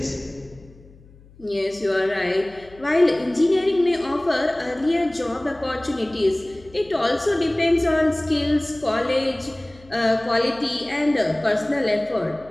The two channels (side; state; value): left; noise; hum, 25 dB below the sound